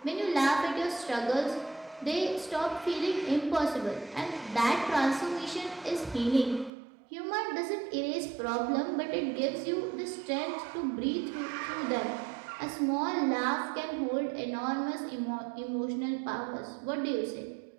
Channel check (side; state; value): left; drops out; at 6.7 s